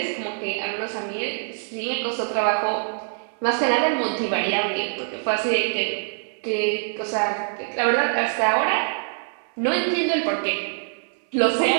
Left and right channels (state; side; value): silent; left; 62 dB below the other